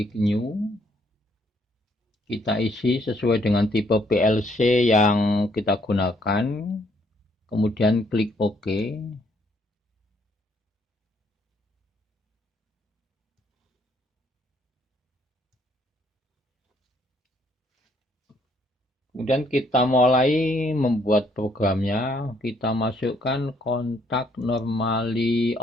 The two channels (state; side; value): normal; both; correlation 0.68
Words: new. Kita isi sesuai dengan tipe PLC yang kita gunakan. Kemudian klik OK. Kemudian kita mulai membuat programnya. Kita masukkan kontak normally